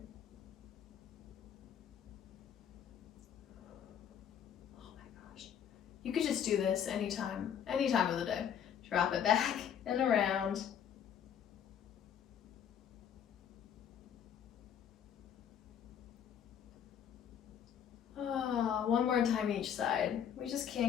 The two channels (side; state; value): right; quieter; 8.8 dB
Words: You could just do this any time of the day. Drop it back and around. Oh, one more time each side. We just